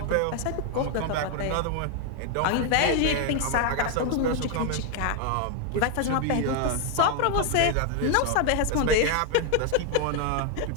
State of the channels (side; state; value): both; different; correlation 0.00